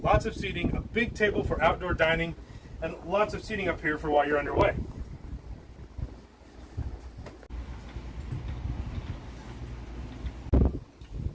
Lots of seating, a big table for outdoor dining, and lots of seating up here for while you're underway.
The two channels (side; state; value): both; identical; correlation 1.00